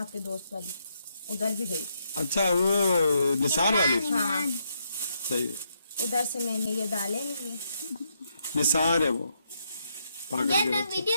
दोस्त वाली, उधर भी गई। अच्छा वो निसार वाली। हाँ सही है, उधर से मैंने ये डाले नहीं ये। निसार है वो पागल यार के ना बच्चे।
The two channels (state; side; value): inverted; both; correlation -0.78